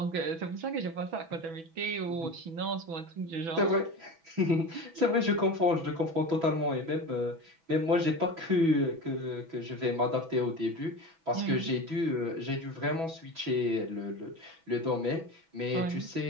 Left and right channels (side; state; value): left; late; 6.1 ms